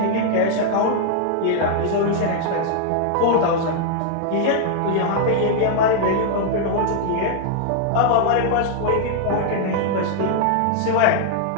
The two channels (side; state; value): both; different; correlation 0.00